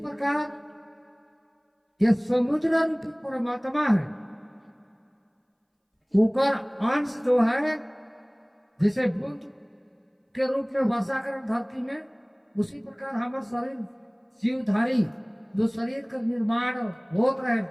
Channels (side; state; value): both; identical; correlation 1.00